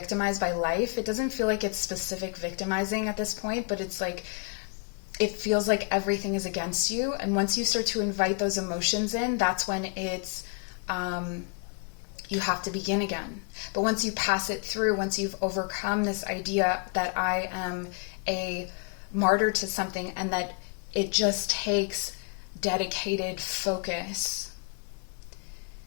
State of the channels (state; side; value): quieter; right; 36.3 dB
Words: by life. It doesn't feel like it's specific victimizing at this point, but it's like, it feels like everything is against you. And once you start to invite those emotions in, that's when it's you have to begin again. But once you pass it through, once you've overcome this idea that I am a martyr to something and that it just takes dedicated focus,